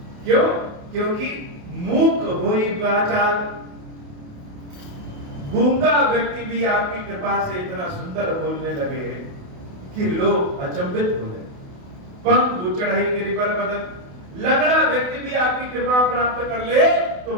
क्यों? क्योंकि मूक होई वाचाल, गूंगा व्यक्ति भी आपकी कृपा से इतना सुंदर बोलने लगे कि लोग अचंभित हो गए। पंख चढ़ाई गिरि पर बदन, लगड़ा व्यक्ति भी आपकी कृपा प्राप्त कर ले तो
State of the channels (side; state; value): left; late; 28 ms